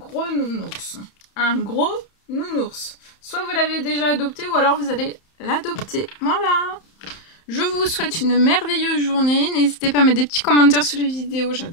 nounours. Un gros nounours. Soit vous l'avez déjà adopté ou alors vous allez l'adopter. Voilà. Je vous souhaite une merveilleuse journée. N'hésitez pas à mettre des petits commentaires sur les vidéos.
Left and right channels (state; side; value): late; right; 31 ms